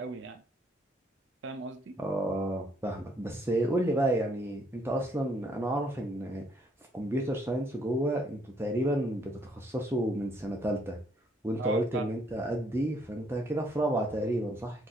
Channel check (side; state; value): both; normal; correlation 0.68